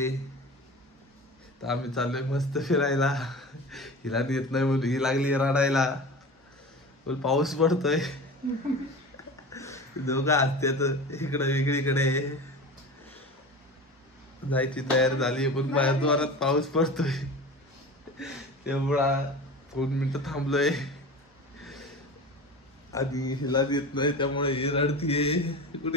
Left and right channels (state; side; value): normal; both; correlation 0.33